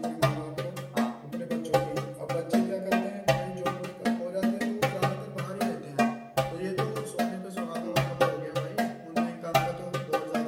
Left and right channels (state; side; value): identical; both; correlation 1.00